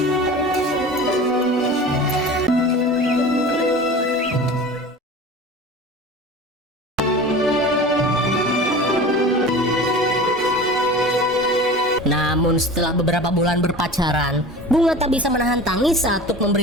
Namun setelah beberapa bulan berpacaran, bunga tak bisa menahan tangis saat Tuk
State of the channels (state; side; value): normal; both; correlation 0.36